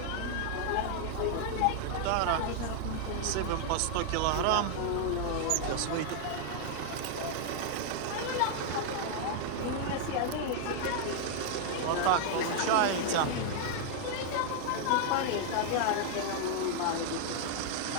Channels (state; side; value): different; both; correlation 0.00